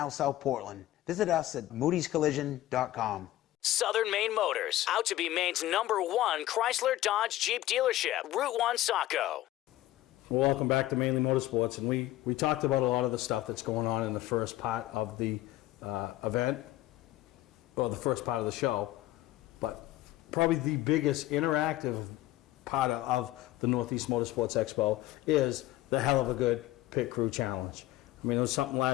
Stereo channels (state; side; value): quieter; right; 15.4 dB